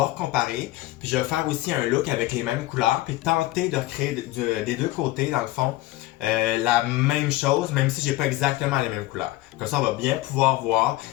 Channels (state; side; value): quieter; right; 17.6 dB